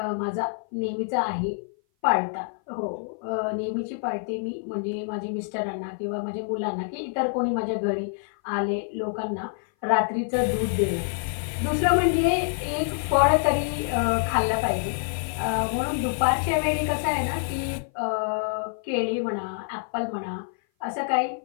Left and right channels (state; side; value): silent; right; 56 dB below the other